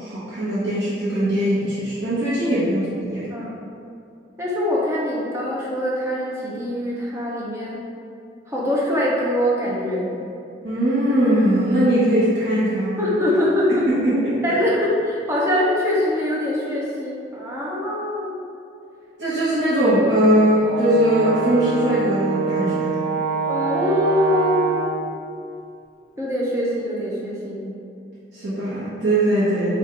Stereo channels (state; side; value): normal; both; correlation 0.45